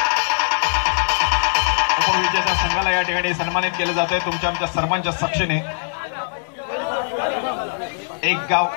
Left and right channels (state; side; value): silent; right; digital silence